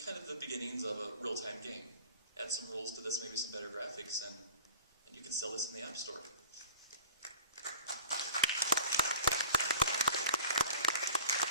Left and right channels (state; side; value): inverted; both; correlation -0.41